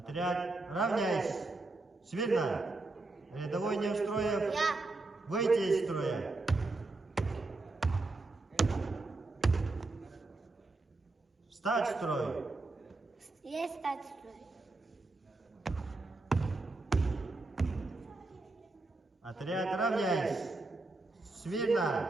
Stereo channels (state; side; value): quieter; left; 3.2 dB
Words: равняйсь! Смирно! Рядовой Неустроев, выйти из строя! Встать в строй! Есть стать в строй. Отряд, равняйсь! Смирно!